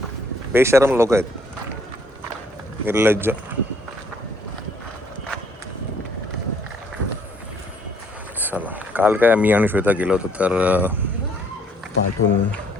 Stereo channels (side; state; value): both; normal; correlation 0.64